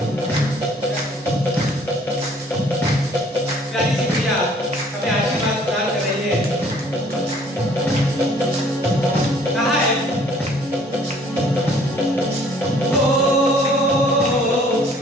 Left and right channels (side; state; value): both; normal; correlation 0.58